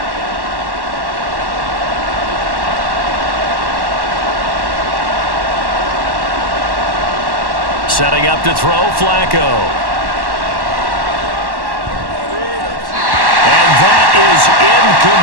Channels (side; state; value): left; late; 1.1 ms